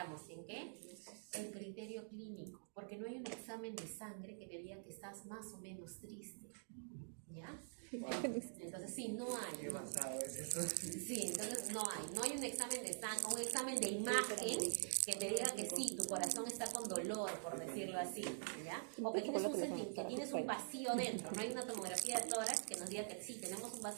¿en qué? En criterio clínico, porque no hay un examen de sangre que te diga que estás más o menos triste, ¿ya? Entonces sí, no hay. Qué basado es eso. Sí, entonces no hay un examen de sangre, un examen de imagen que te diga que sí, tu corazón está con dolor, por decirlo así, ¿ya? O que tienes un vacío dentro, no hay una tomografía de tórax que nos diga que sí, tenemos un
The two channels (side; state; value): left; silent; digital silence